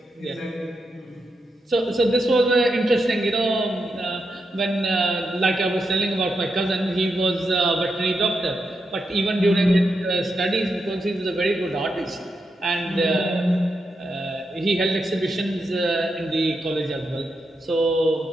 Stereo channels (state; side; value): normal; both; correlation 0.85